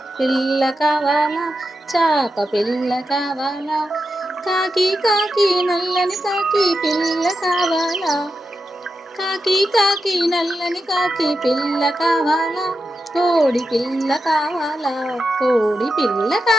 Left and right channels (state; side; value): normal; both; correlation 0.89